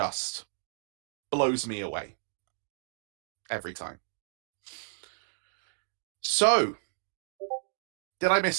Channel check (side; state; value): left; silent; digital silence